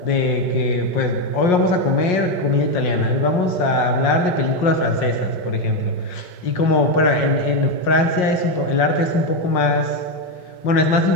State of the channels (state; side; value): late; right; 5.6 ms